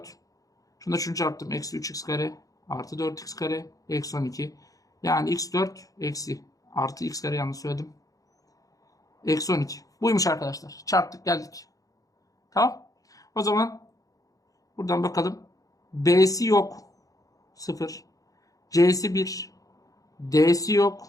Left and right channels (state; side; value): late; right; 0.17 ms